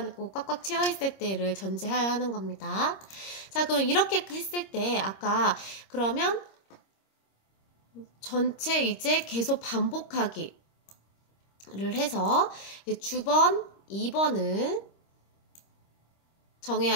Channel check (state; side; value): late; right; 26 ms